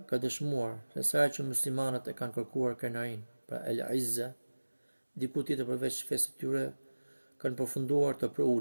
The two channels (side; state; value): both; inverted; correlation -1.00